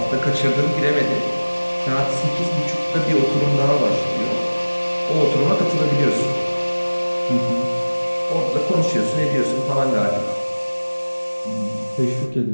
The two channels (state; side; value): inverted; both; correlation -1.00